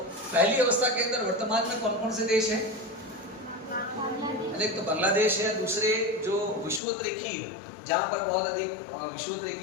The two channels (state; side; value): drops out; right; at 6.8 s